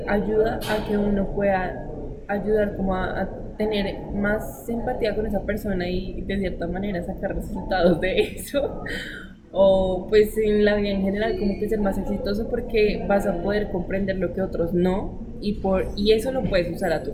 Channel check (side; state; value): both; identical; correlation 1.00